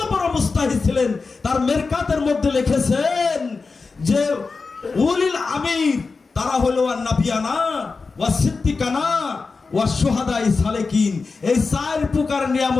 বড় মুস্তাহিদ ছিলেন। তার মিরকাতের মধ্যে লিখেছেন যে উলিল আমির তারা হলো আন-নাবিয়ানা ওয়া সিদ্দিকানা ওয়া শুহাদাই সালেকিন। এই 4 প্রকার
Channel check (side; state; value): right; quieter; 4.3 dB